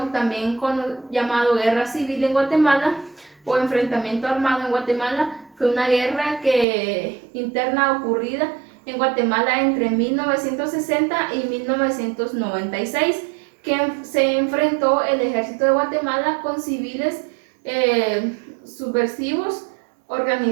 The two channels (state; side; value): drops out; left; at 6.7 s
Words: también llamado guerra civil en Guatemala o enfrentamiento armado en Guatemala, fue una guerra interna ocurrida en Guatemala entre 1960 y 1996, que se enfrentó el ejército de Guatemala con civiles subversivos